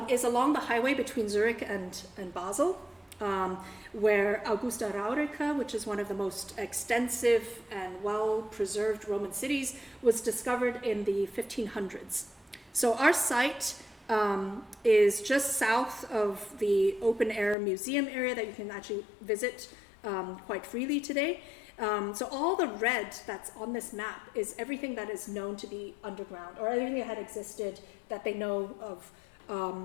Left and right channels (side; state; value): right; drops out; at 17.6 s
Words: is along the highway between Zurich and Basel. Where Augusta Raurica, which is one of the most extensive and well-preserved Roman cities, was discovered in the 1500s. So our site is just south of the open air museum area that you can actually visit quite freely today. So all the red that's on this map is everything that is known to be underground, or everything that had existed that they know of